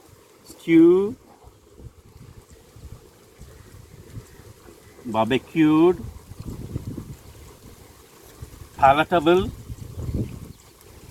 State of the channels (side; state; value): both; identical; correlation 1.00